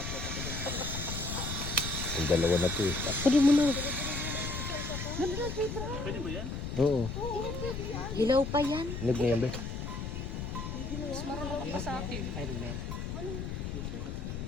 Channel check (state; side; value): noise; left; rumble, 5 dB below the sound